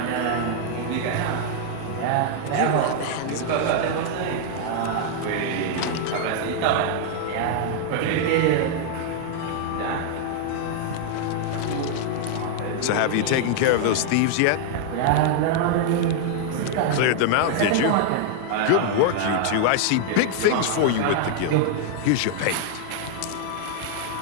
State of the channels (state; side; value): different; both; correlation -0.01